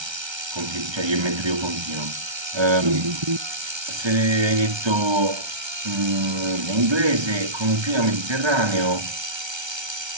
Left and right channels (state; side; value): late; left; 1.3 ms